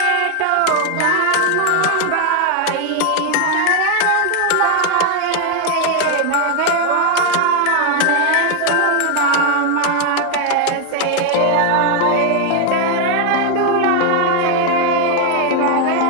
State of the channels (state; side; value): different; both; correlation 0.01